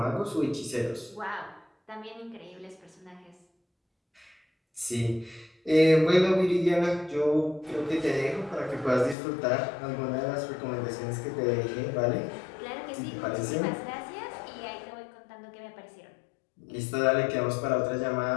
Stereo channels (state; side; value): drops out; right; at 9.2 s